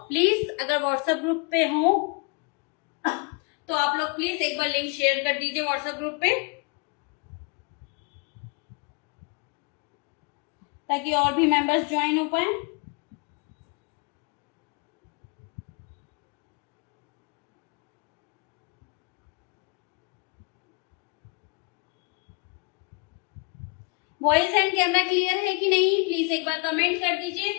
प्लीज अगर व्हाट्सएप ग्रुप पे हो तो आप लोग प्लीज एक बार लिंक शेयर कर दीजिए व्हाट्सएप ग्रुप पे, ताकि और भी मेंबर्स ज्वाइन हो पाए। वॉइस एंड कैमरा क्लियर है कि नहीं, प्लीज एक बार कमेंट कर दीजिए।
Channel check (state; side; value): quieter; right; 32.2 dB